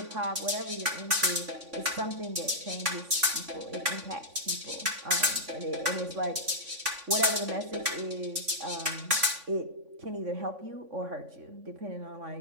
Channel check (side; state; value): left; late; 3.5 ms